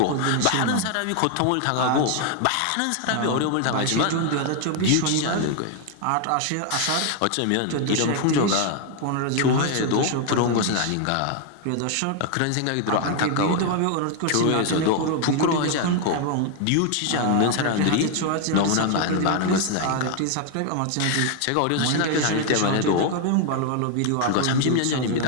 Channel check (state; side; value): different; both; correlation 0.00